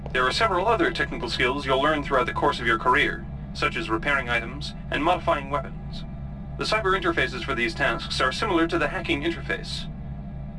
There are several other technical skills you'll learn throughout the course of your career, such as repairing items and modifying weapons. The cyber interfaces for these tasks are similar to the hacking interface.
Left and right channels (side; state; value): both; identical; correlation 1.00